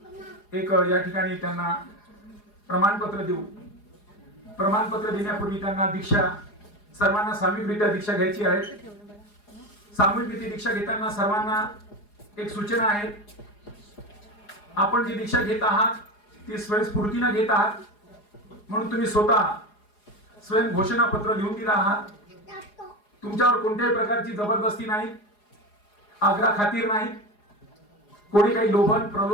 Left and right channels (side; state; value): right; late; 4.8 ms